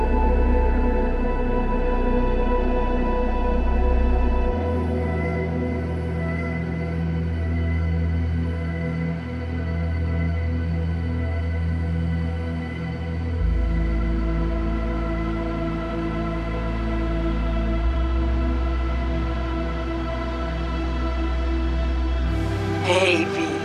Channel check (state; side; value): identical; both; correlation 1.00